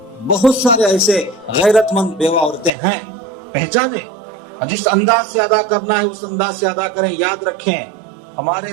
بہت سارے ایسے غیرت مند بیوہ عورتیں ہیں، پہچانیں۔ جس انداز سے ادا کرنا ہے اس انداز سے ادا کریں۔ یاد رکھیں،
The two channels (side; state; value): left; drops out; at 2.7 s